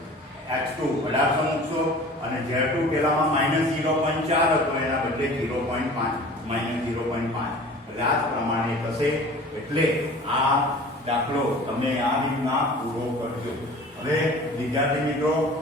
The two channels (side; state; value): both; normal; correlation 0.43